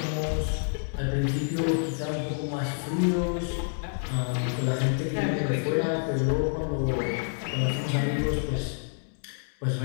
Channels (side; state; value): right; silent; digital silence